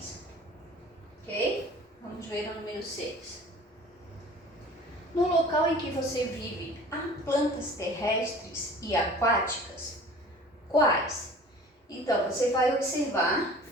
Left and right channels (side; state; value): both; normal; correlation 0.45